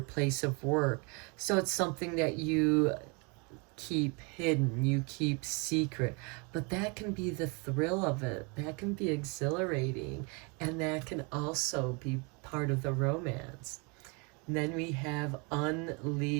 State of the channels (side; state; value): left; quieter; 31.5 dB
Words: place of work. So it's something that you keep hidden, you keep secret. But that can be the thrill of it. That can be exhilarating. And that can also be part of the romance. And then we have